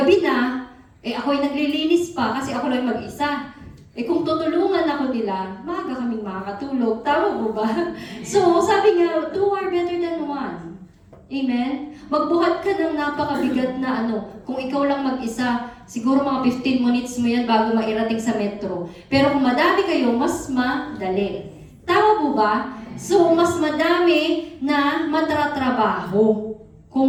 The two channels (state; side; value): identical; both; correlation 1.00